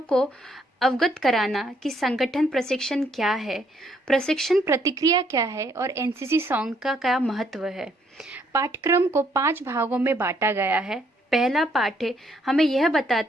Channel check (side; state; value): both; normal; correlation 0.69